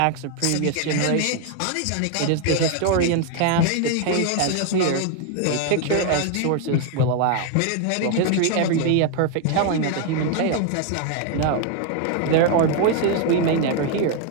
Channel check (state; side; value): different; both; correlation 0.01